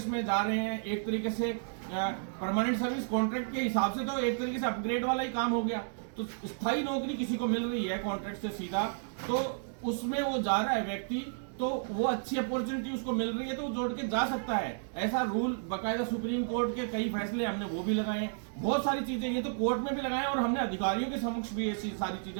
में जा रहे हैं, एक तरीके से परमानेंट सर्विस कॉन्ट्रैक्ट के हिसाब से तो एक तरीके से अपग्रेड वाला ही काम हो गया। तो स्थायी नौकरी किसी को मिल रही है कॉन्ट्रैक्ट से सीधा, तो उसमें वो जा रहा है व्यक्ति, तो वो अच्छी अपॉर्चुनिटी उसको मिल रही है तो वो जोड़ के जा सकता है। ऐसा रूल बकायदा सुप्रीम कोर्ट के कई फैसले हमने वो भी लगाए हैं, बहुत सारी चीजें ये तो कोर्ट में भी लगाए हैं और हमने अधिकारियों के समक्ष भी ऐसी सारी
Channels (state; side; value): silent; left; digital silence